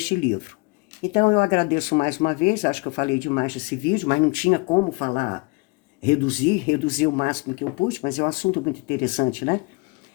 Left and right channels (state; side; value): quieter; right; 27.2 dB